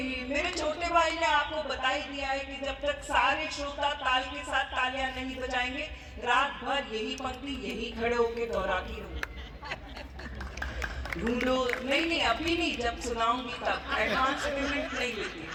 मेरे छोटे भाई ने आपको बता ही दिया है कि जब तक सारे श्रोता ताल के साथ तालियां नहीं बजाएंगे रात भर यही पंक्ति यही खड़े होके दोहराती रहूंगी। ढूंढो नहीं, अभी नहीं, जब सुनाऊंगी तब, एडवांस पेमेंट नहीं लेती।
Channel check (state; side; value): identical; both; correlation 1.00